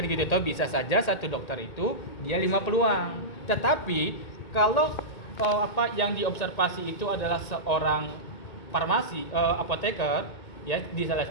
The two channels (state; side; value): late; right; 2.2 ms